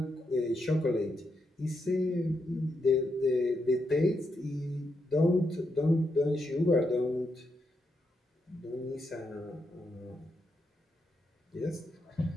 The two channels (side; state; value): both; normal; correlation 0.82